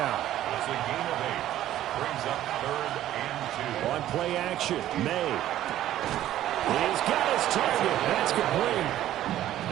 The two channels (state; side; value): quieter; left; 12.9 dB